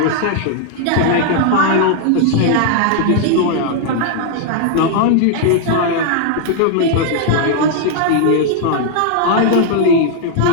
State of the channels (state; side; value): different; both; correlation 0.00